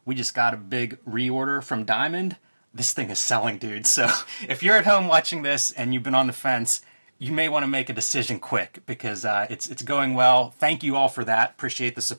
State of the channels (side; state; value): both; inverted; correlation -1.00